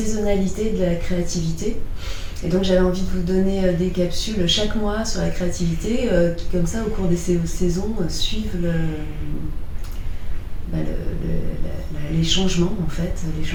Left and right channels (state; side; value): identical; both; correlation 1.00